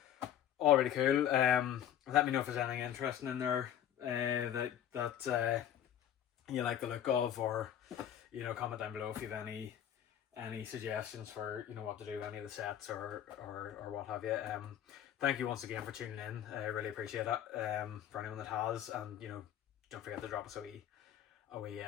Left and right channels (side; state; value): right; quieter; 10.4 dB